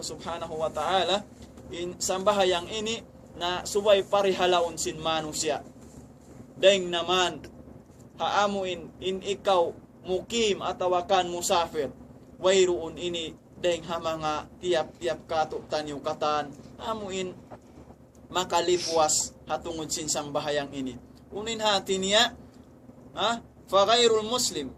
wa ta'ala in sambahayang ini na subay parihalaon sin manusia. Deng naman haamuin in ikaw mukim atawakan musafir wayruun ini deng ha mga tiap-tiap kato tanyo katan amuin makalipuas hatungod sin sambahayang ini. Unin hati niya fa ghairul muslim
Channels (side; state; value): both; identical; correlation 1.00